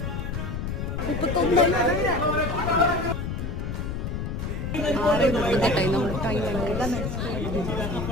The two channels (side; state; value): left; noise; rumble, 3 dB below the sound